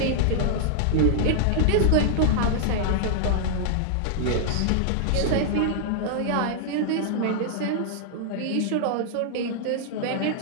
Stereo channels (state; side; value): different; both; correlation -0.01